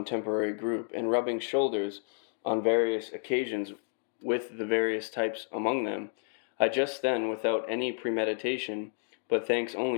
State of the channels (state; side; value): silent; right; digital silence